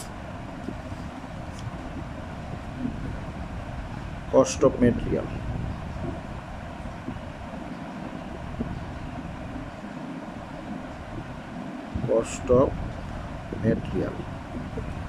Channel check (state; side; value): identical; both; correlation 1.00